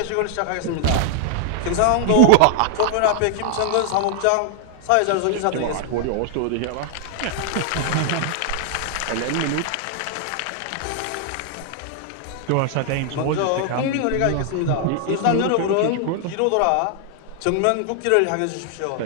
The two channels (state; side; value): different; both; correlation 0.00